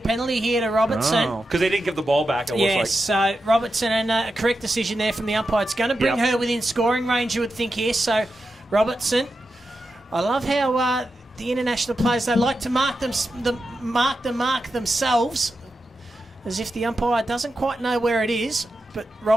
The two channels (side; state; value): both; normal; correlation 0.89